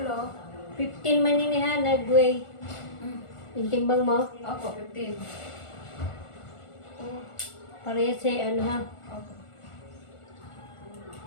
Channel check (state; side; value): late; right; 1.4 ms